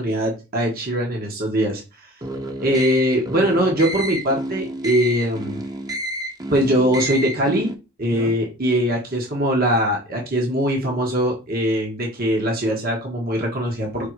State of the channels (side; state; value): both; normal; correlation 0.44